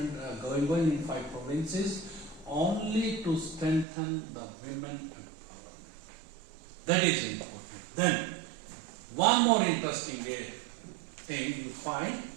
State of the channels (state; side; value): drops out; left; at 3.9 s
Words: going on in 5 provinces, only to strengthen the women empowerment. That is important. Then, one more interesting thing you find,